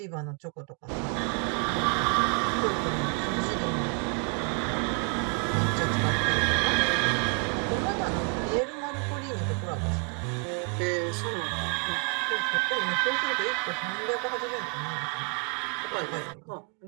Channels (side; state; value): left; quieter; 35.7 dB